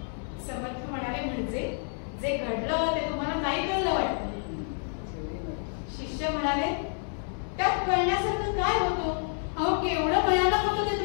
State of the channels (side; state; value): right; silent; 59 dB below the other